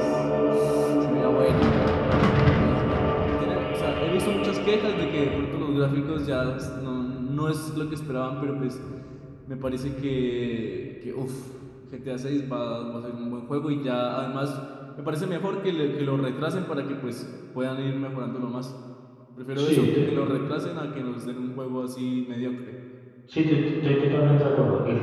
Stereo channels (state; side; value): identical; both; correlation 1.00